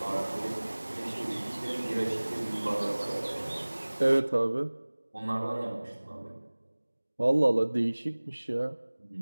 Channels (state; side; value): inverted; both; correlation -1.00